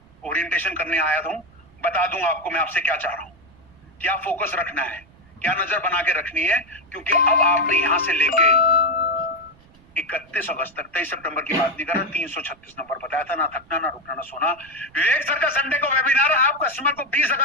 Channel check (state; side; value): noise; right; rumble, 27 dB below the sound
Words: ओरिएंटेशन करने आया था, बता दूं आपको मैं आपसे क्या चाह रहा हूं, क्या फोकस रखना है, क्या नजर बना के रखनी है। क्योंकि अब आपने यहां से लेके 31 अगस्त तक, 23 सितंबर की बात नहीं कर रहा, 336 नंबर बताया था, ना थकना ना रुकना ना सोना। विवेक सर का संडे को वेबिनार, आप कस्टमर को 20